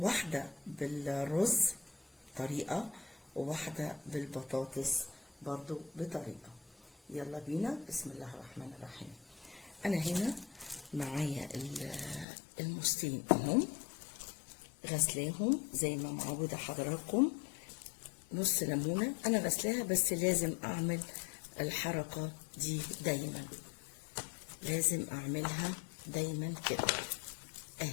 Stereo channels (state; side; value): drops out; right; at 12.2 s